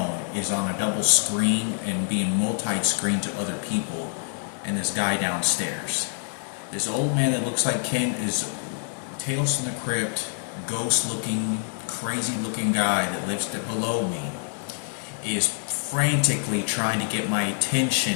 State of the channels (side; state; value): right; silent; 61 dB below the other